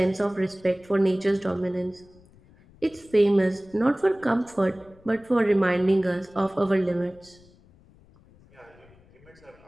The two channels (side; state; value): left; noise; rumble, 27 dB below the sound